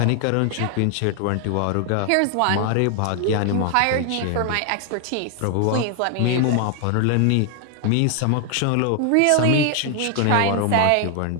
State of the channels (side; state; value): both; different; correlation 0.00